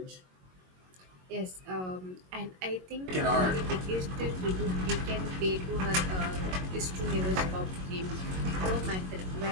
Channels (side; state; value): left; late; 22 ms